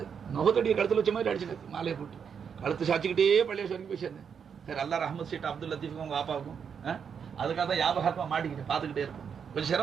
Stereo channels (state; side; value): quieter; left; 7.0 dB